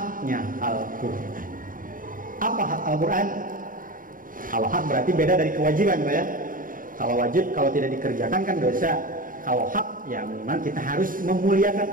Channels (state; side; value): late; left; 0.40 ms